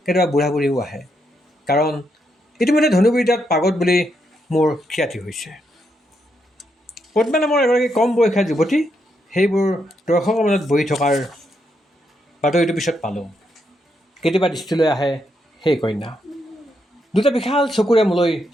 কেতিয়াবা বুঢ়া বুঢ়ীও আহে। কাৰণ ইতিমধ্যে ধনুৰ্বিদ্যাত পাগত বুলি মোৰ খ্যাতি হৈছে। পদ্মা নামৰ এগৰাকী কম বয়সীয়া যুৱতী সেইবোৰ দৰ্শকৰ মাজত বহি থকাৰ বাতৰিটো পিছত পালোঁ। কেতিয়াবা দৃষ্টিলৈ আহে সেই কন্যা, দুটা বিশাল চকুৰে মোলৈ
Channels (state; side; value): normal; both; correlation 0.80